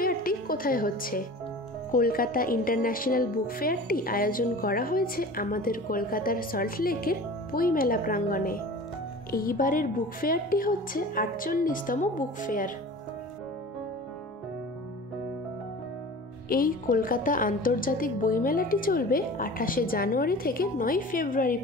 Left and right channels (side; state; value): both; normal; correlation 0.39